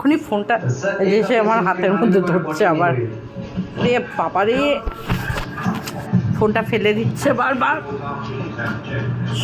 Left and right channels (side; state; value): both; identical; correlation 1.00